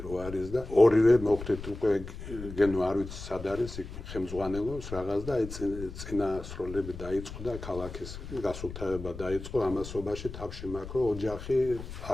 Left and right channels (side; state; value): left; noise; rumble, 11 dB below the sound